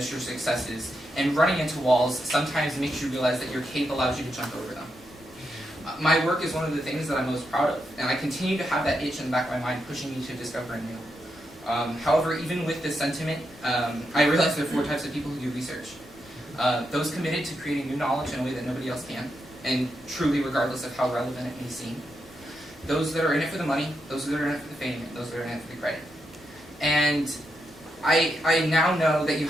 your successes, and running into walls sometimes makes you realize that your cape allows you to jump over them. My work is one of the things that I'm most proud of, and I continue to have that itch in the back of my mind pushing me to discover new. However, even with this sentiment, I realize there are 4 types of people who do research. Those committed to creating new knowledge in a way that nobody else can, and truly regardless of how relevant it may seem. Those that are in it for the money, those that are in it for the fame, and those that are in it for the credit. And I now know that you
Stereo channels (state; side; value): normal; both; correlation 0.83